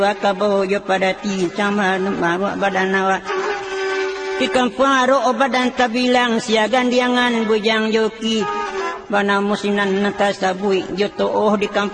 kabo jo pada ti sama maru badan awak. Di kampung aro badan tabilang siagan diangan bujang joki bana musinan natasabui joto di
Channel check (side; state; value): both; identical; correlation 1.00